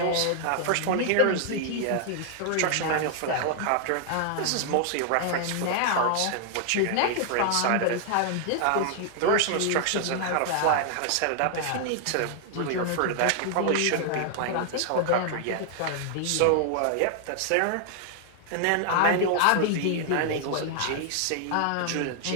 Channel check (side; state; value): both; different; correlation 0.00